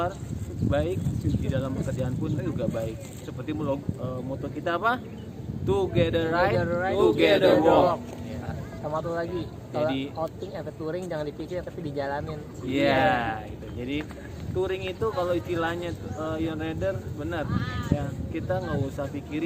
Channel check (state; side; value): identical; both; correlation 1.00